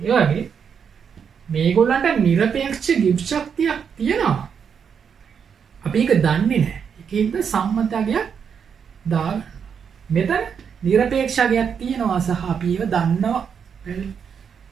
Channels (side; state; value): left; quieter; 7.0 dB